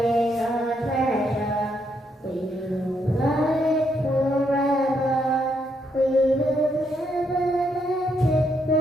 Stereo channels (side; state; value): both; normal; correlation 0.76